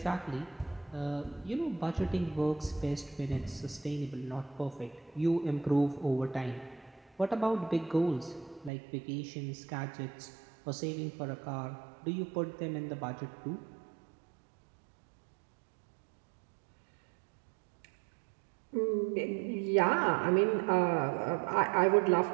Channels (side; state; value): left; drops out; at 8.7 s